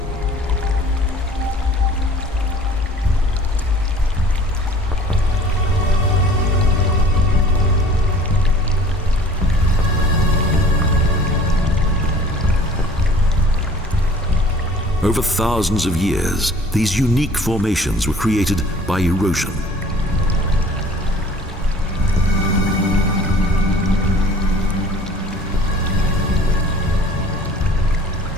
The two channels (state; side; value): normal; both; correlation 0.49